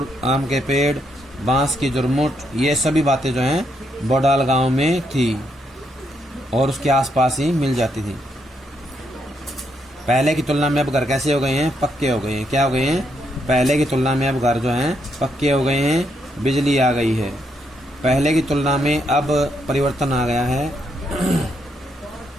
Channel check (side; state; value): both; normal; correlation 0.77